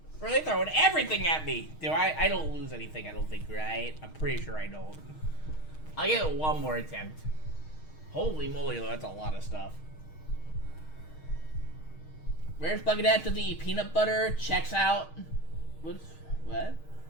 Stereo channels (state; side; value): late; right; 6.4 ms